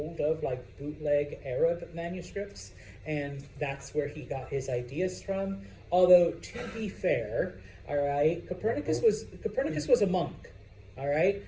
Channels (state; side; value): identical; both; correlation 1.00